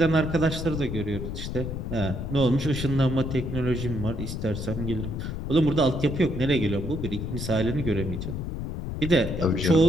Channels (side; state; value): left; noise; rumble, 5 dB below the sound